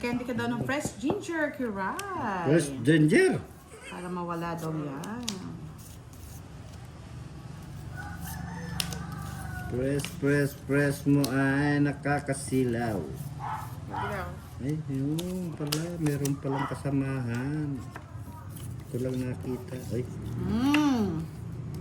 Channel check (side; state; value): both; identical; correlation 1.00